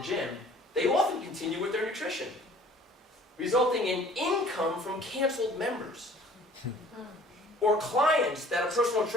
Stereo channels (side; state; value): both; normal; correlation 0.52